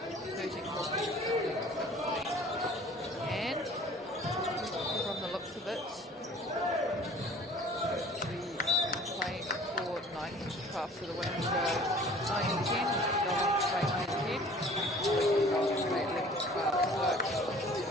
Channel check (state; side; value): normal; both; correlation 0.49